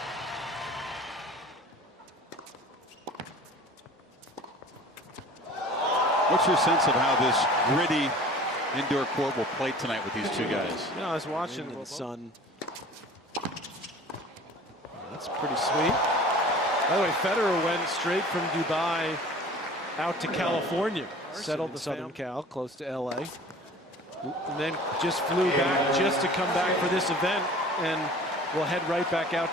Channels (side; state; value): both; normal; correlation 0.44